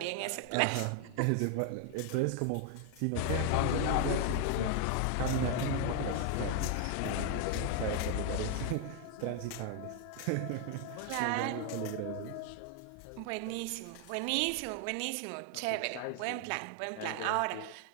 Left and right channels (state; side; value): different; both; correlation 0.00